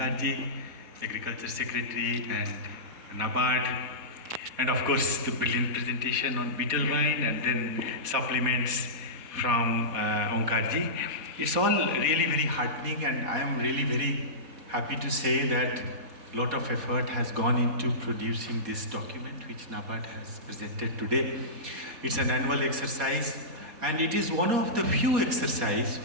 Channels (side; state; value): left; late; 4.3 ms